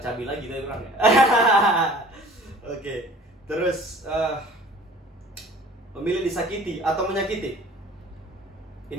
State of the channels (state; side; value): normal; both; correlation 0.48